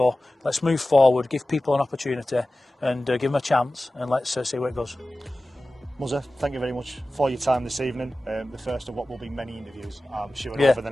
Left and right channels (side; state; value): both; normal; correlation 0.96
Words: Let's move forward, give people an opportunity and give them a chance, and let's see where it goes. Muzza, thank you very much for your time this evening. The first of what will be many interviews, I'm sure, over the